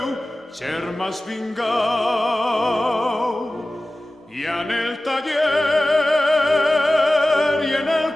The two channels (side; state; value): both; normal; correlation 0.96